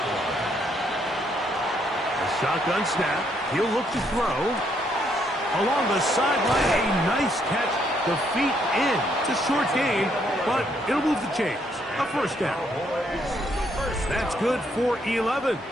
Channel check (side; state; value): both; normal; correlation 0.72